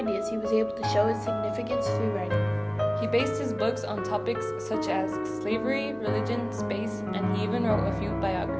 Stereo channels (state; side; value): noise; right; hum, 29 dB below the sound